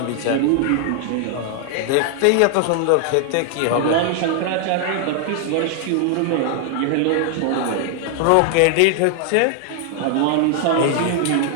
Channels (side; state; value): both; different; correlation 0.00